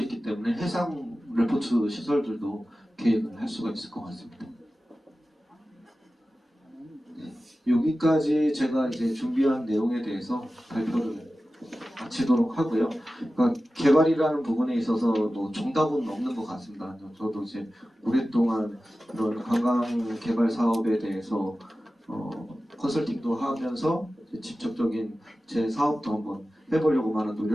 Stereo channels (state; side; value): normal; both; correlation 0.95